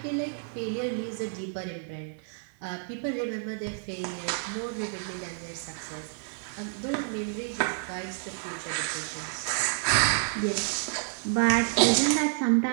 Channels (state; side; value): silent; left; digital silence